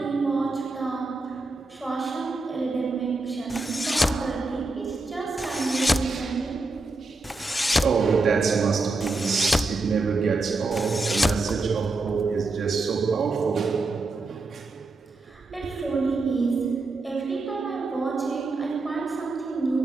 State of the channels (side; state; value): left; quieter; 3.4 dB